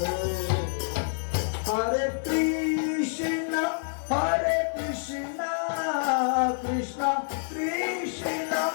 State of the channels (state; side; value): silent; right; digital silence